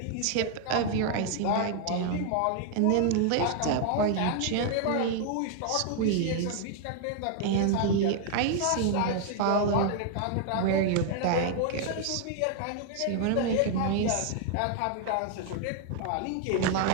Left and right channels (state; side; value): different; both; correlation 0.00